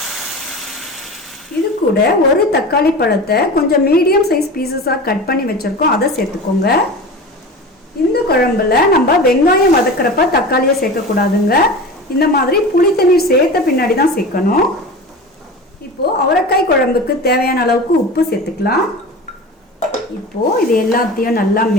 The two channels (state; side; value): normal; both; correlation 0.32